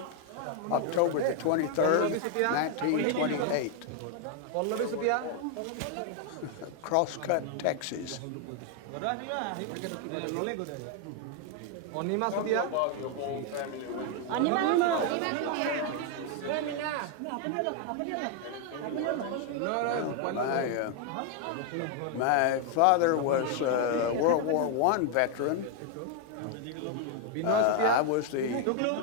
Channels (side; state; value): both; different; correlation 0.01